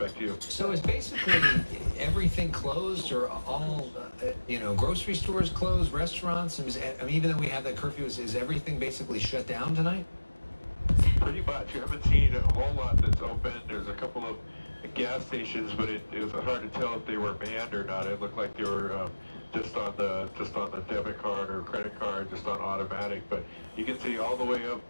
to you. So is basically everything closed, or all, grocery stores closed, restaurants? I mean, even though we have that curfew, is everything basically shut down tonight? Pretty much. You haven't seen a whole lot that's open. There's a couple of gas stations, but it was hard to tell if they were manned or not. It looked like they were just on the debit card or credit card, just on automatic. But you can see all the way up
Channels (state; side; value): inverted; both; correlation -1.00